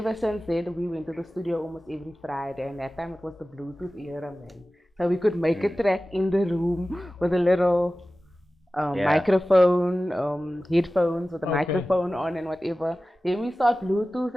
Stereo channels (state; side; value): normal; both; correlation 0.96